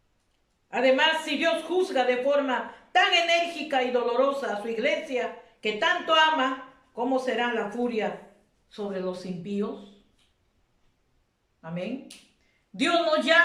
Además, si Dios juzga de forma tan enérgica y dolorosa a su iglesia que tanto ama, ¿cómo será la furia sobre los impíos? Amén. Dios nos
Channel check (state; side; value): identical; both; correlation 1.00